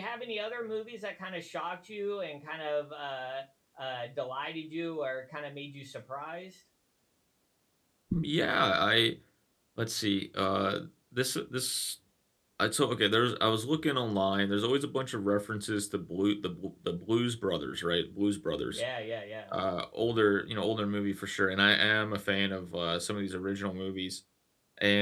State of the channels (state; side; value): identical; both; correlation 1.00